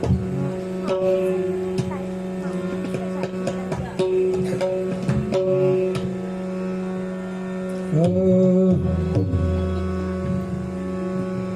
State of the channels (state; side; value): noise; right; rumble, 26 dB below the sound